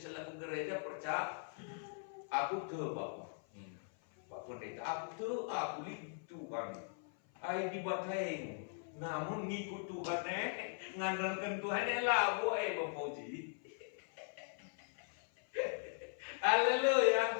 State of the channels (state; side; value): silent; right; 51 dB below the other